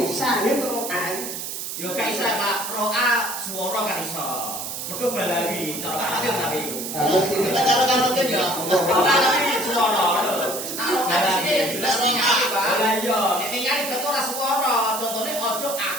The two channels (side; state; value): right; noise; hiss, 6 dB below the sound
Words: sahid roa. Yo gak iso Pak, roa swara gak iso. Mergo balari, cara tapi. Kalau kan ya. Balari swara. Balari jelas ningali, Pak. Lah iya, nek ningali betul ora swara. Contone ojo